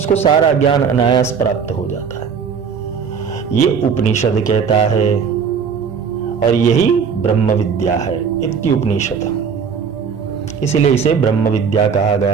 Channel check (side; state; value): left; quieter; 6.5 dB